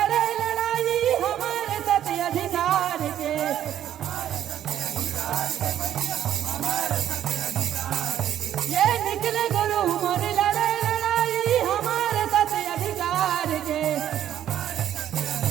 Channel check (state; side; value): quieter; left; 10.9 dB